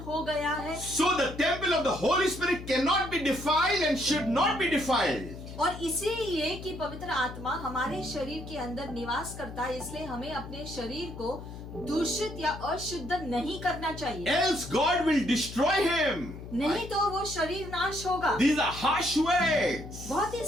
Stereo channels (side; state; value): left; noise; hum, 12 dB below the sound